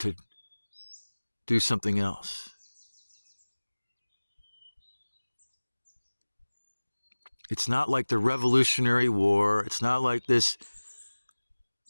do something else. It's not like the Revolutionary War. It's not like this,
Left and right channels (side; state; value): both; inverted; correlation -1.00